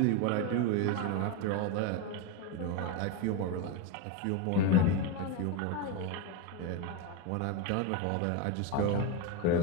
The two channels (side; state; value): both; different; correlation 0.03